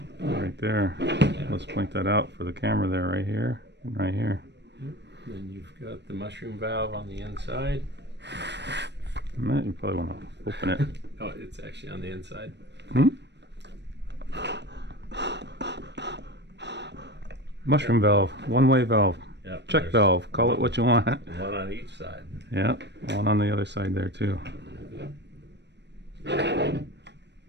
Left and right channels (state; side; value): late; left; 0.50 ms